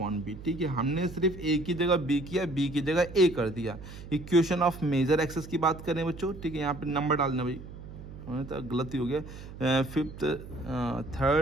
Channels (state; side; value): noise; right; hum, 13 dB below the sound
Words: बी, ठीक है। हमने सिर्फ a की जगह b किया, b की जगह a कर दिया। इक्वेशन ऑफ मेजर एक्सेस की बात करें बच्चों, ठीक है, यहाँ पे नंबर डालना भाई, तो गलती हो गया, 5th